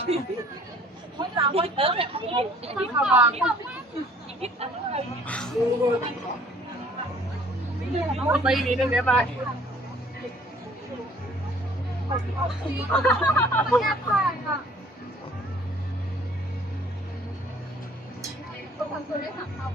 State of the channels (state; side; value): normal; both; correlation 0.55